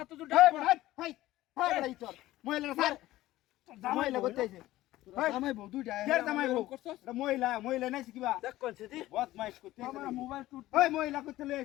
তো তো এই বড়া এই বড়া ইতর মহিলা স্যার মহিলা করতে আইছে জামাই বউ দুইটা কে জামাই বউ করছস এটা মহিলা মহিলা নাই শিখবা দেখ কোনছে দি বদমাইশ করতে আমার মোবাইল টুট ওই মহিলা করতে লই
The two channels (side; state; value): right; quieter; 16.0 dB